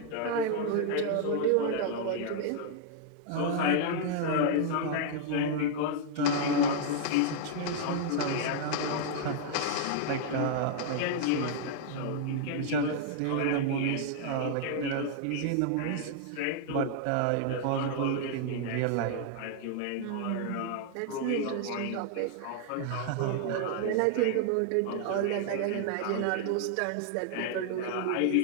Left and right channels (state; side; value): different; both; correlation -0.01